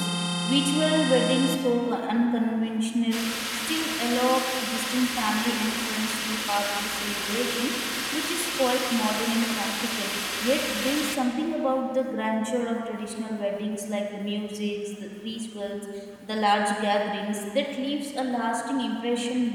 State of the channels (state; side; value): identical; both; correlation 1.00